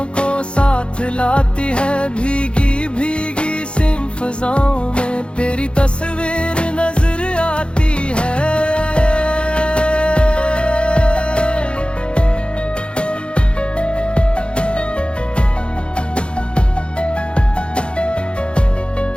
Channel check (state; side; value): late; right; 0.057 ms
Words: को साथ लाती है। भीगी भीगी सी फिजाओं में तेरी तस्वीर नजर आती है।